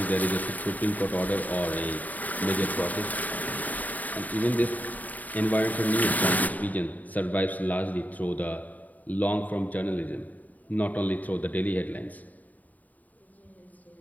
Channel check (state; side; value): late; right; 0.077 ms